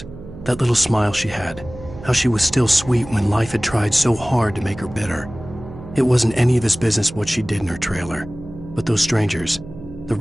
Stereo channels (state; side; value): noise; right; hum, 15 dB below the sound